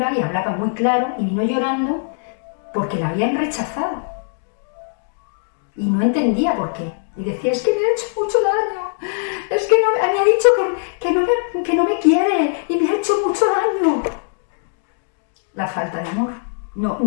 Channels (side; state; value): right; silent; digital silence